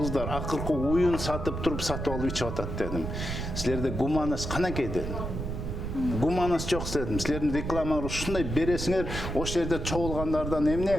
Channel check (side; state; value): right; noise; rumble, 5 dB below the sound